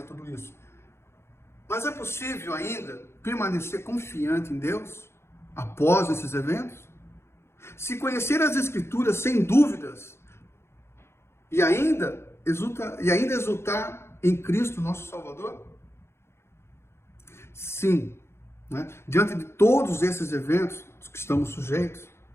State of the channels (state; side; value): late; right; 0.12 ms